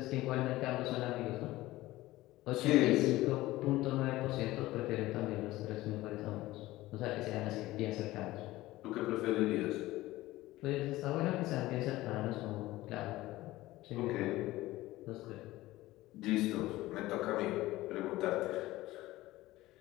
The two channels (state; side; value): quieter; right; 17.5 dB